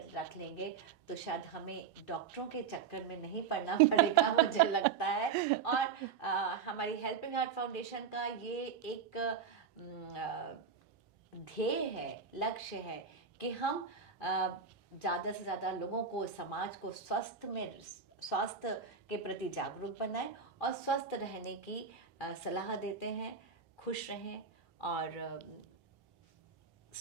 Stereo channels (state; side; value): quieter; left; 6.3 dB